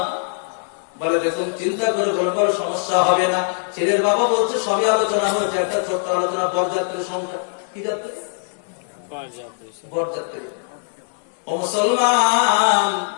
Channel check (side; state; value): right; silent; 59 dB below the other